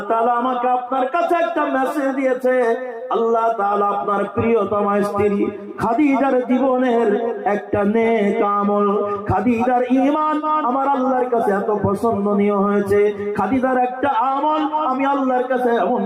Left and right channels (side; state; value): both; identical; correlation 1.00